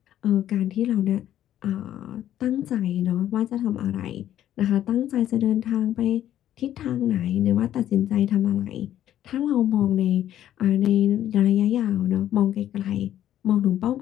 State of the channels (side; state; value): right; quieter; 11.8 dB